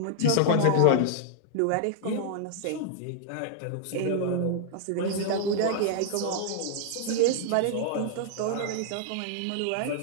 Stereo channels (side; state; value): both; different; correlation -0.01